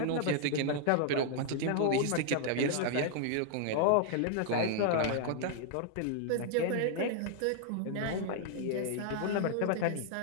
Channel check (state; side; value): different; both; correlation 0.00